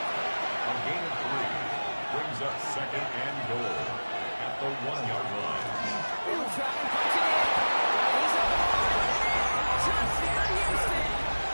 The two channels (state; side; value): inverted; both; correlation -1.00